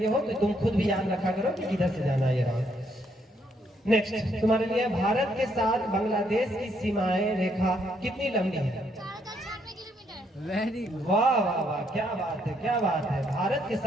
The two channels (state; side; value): normal; both; correlation 0.72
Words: ये हो तो तुम खुद भी याद रखा करो कि किधर से जाना है ये राउंड। नेक्स्ट तुम्हारे लिए, भारत के साथ बांग्लादेश की सीमाएं रेखा कितनी लंबी है? वेरी वाह वाह वाह, क्या बात है, क्या बात है। भारत के